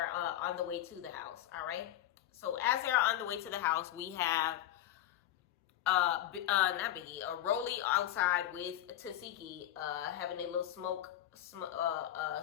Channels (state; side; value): quieter; right; 12.7 dB